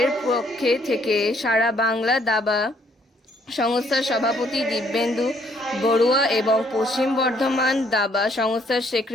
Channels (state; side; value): normal; both; correlation 0.67